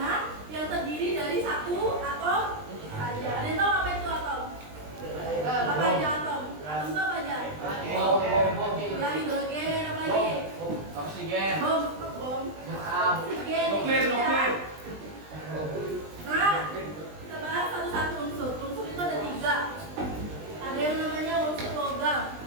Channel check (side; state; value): left; late; 20 ms